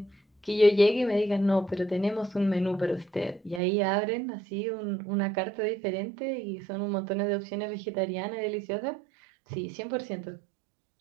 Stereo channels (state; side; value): drops out; left; at 3.6 s